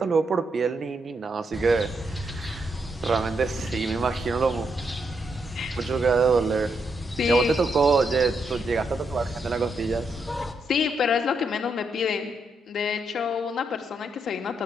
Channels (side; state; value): both; normal; correlation 0.80